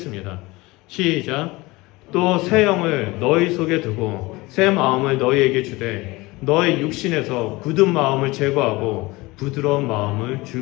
시작. 또 새 영을 너희 속에 두고 새 마음을 너희에게 주되 너의 육신에서 굳은 마음을 제거하고 부드러운 마음을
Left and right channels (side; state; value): right; quieter; 21.9 dB